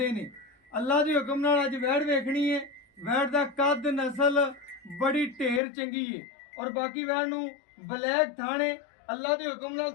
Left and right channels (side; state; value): right; drops out; at 5.6 s